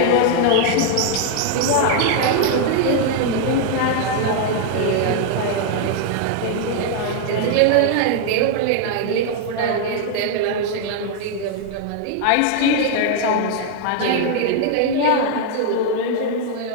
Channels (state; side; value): different; both; correlation 0.00